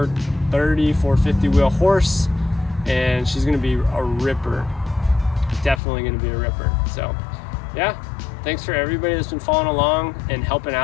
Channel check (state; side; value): drops out; right; at 5.8 s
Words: 450 wheel horse, and she's gonna be a ripper. Definitely gonna be a ripper. So yeah, thanks for everybody that's been following along and helping